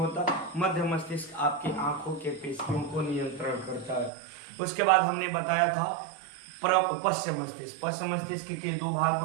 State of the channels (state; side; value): drops out; left; at 4.1 s